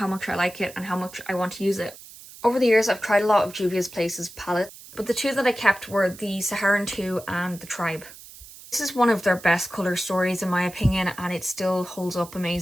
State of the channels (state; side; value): noise; right; hiss, 18 dB below the sound